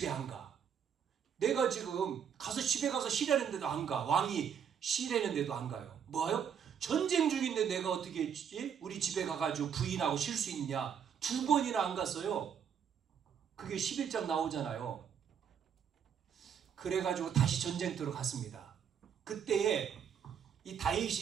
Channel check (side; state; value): left; quieter; 7.8 dB